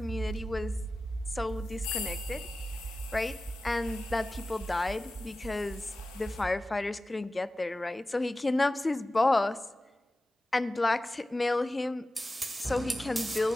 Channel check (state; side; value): normal; both; correlation 0.95